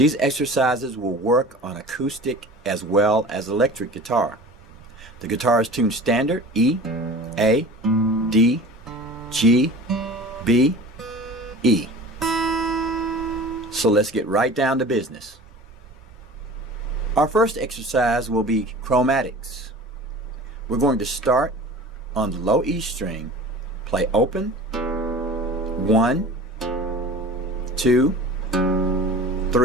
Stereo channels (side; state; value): both; normal; correlation 0.39